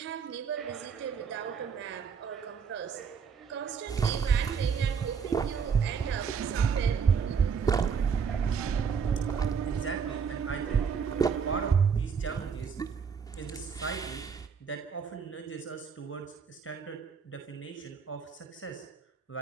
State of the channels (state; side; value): quieter; left; 6.4 dB